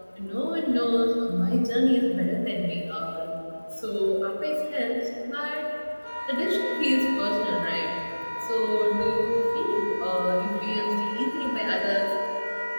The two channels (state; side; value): inverted; both; correlation -1.00